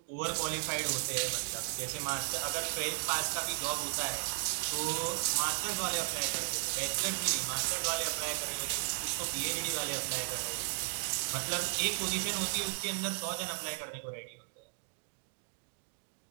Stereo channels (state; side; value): silent; left; digital silence